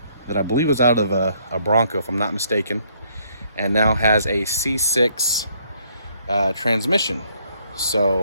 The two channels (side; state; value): both; inverted; correlation -0.68